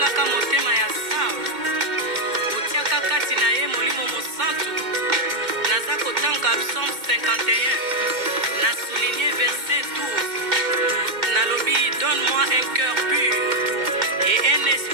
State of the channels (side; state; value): left; late; 2.1 ms